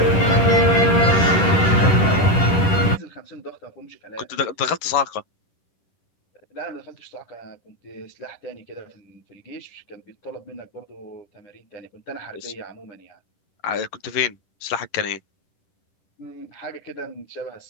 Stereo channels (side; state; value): right; late; 10 ms